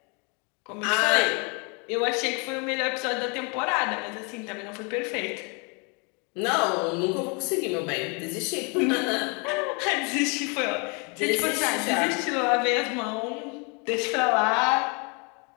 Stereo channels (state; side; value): quieter; right; 33.3 dB